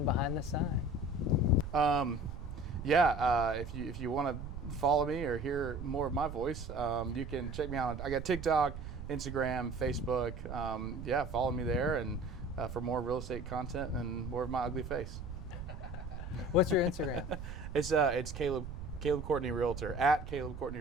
behind the sign. Yeah, if you want to follow me or hear more of my voice, you can check me out. I got TikTok, Instagram, Facebook. Yeah, follow me there and for more real estate content and more of my ugly face. What's your Instagram? It's Caleb Courtney Realtor, at Caleb Courtney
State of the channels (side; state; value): right; noise; rumble, 9 dB below the sound